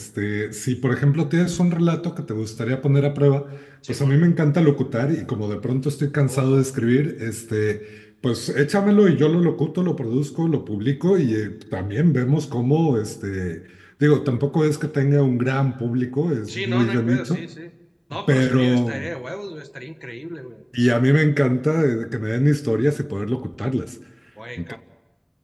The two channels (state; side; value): identical; both; correlation 1.00